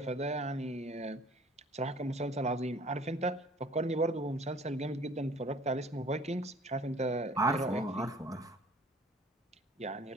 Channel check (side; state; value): both; normal; correlation 0.52